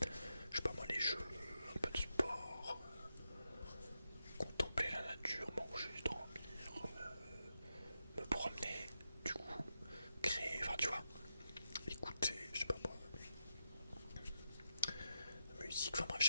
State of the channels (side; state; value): both; inverted; correlation -0.86